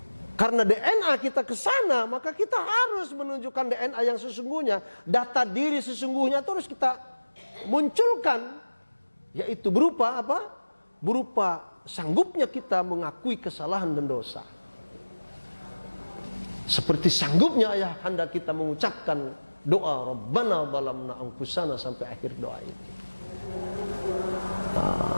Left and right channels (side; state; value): both; inverted; correlation -1.00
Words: Karena DNA kita ke sana, maka kita harus menunjukkan DNA yang sesungguhnya. Data diri sesungguhnya itu harus kita munculkan. Yaitu berupa apa? Berupa sanggupnya kita mengakui kesalahan dan dosa. Seperti sanggupnya ayahanda kita mengucapkan doa Rabbana dhalamna anfusana sampai akhir doa ini.